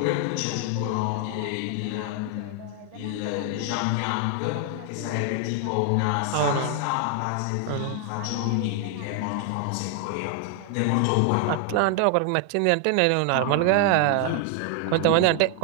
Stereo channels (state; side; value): different; both; correlation 0.00